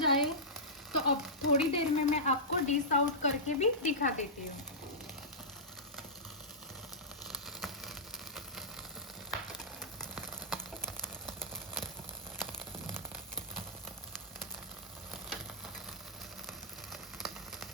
तो अब थोड़ी देर में मैं आपको डिश आउट करके भी दिखा देती हूँ।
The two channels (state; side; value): normal; both; correlation -0.14